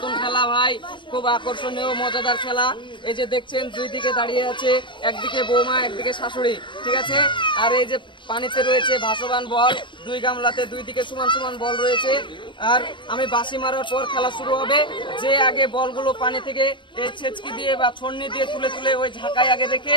খেলা ভাই, খুব আকর্ষণীয় মজাদার খেলা। এই যে দেখছেন দুই দিকে দাঁড়িয়ে আছে, একদিকে বৌমা একদিকে শাশুড়ি, ঠিক আছে। আর এই যে পানিতে রয়েছে ভাসমান বল, দুই গামলাতে দুই দিকে সমান সমান বল রয়েছে। আর আমি বাঁশি মারার পর খেলা শুরু হবে। যে আগে বলগুলো পানি থেকে এই ছেচকি দিয়ে বা ছন্নি দিয়ে তুলে তুলে ওই ঝাঁকায় আগে রেখে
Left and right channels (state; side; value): late; right; 0.23 ms